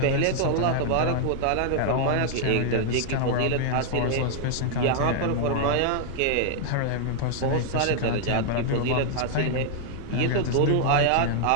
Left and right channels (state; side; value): different; both; correlation 0.00